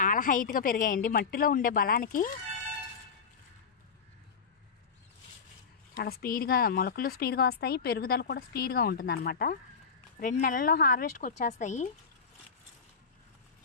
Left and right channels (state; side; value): quieter; right; 5.7 dB